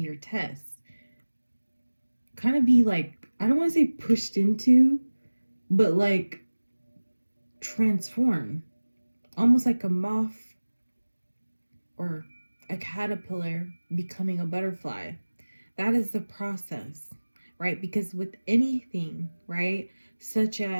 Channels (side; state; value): both; inverted; correlation -1.00